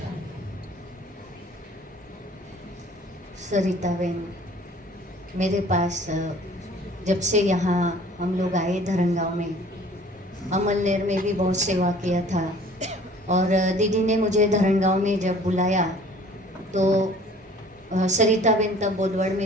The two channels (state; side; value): normal; both; correlation 0.51